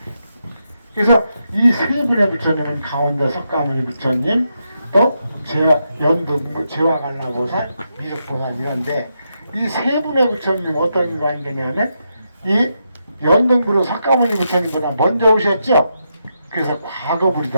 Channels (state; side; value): inverted; both; correlation -0.83